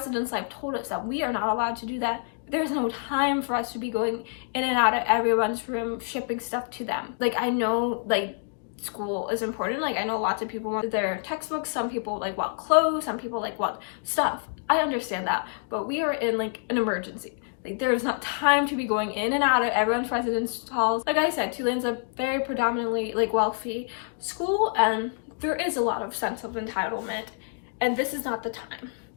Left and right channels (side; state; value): right; silent; 60 dB below the other